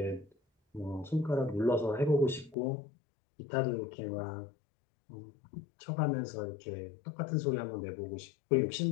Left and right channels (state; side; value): drops out; right; at 2.6 s